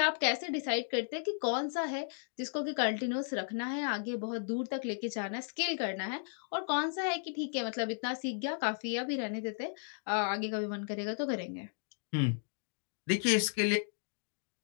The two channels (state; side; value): silent; right; digital silence